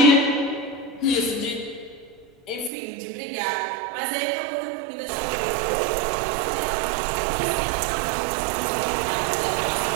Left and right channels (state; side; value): drops out; left; at 2.7 s